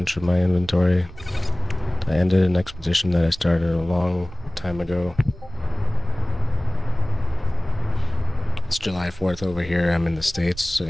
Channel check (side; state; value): right; noise; rumble, 18 dB below the sound